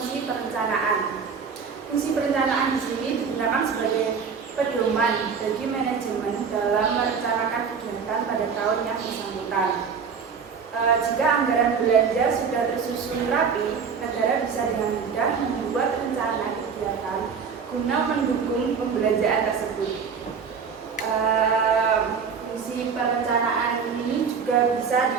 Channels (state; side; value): quieter; left; 6.1 dB